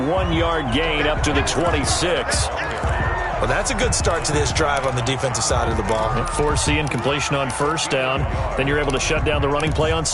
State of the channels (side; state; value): both; identical; correlation 1.00